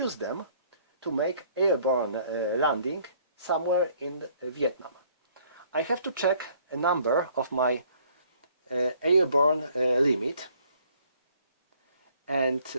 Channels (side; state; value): both; inverted; correlation -0.61